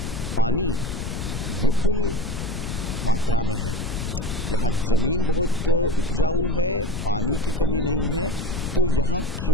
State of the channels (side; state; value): left; noise; rumble, 5 dB below the sound